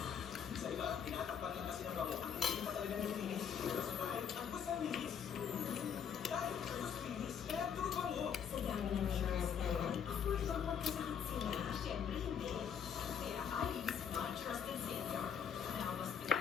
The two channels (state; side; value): quieter; right; 7.8 dB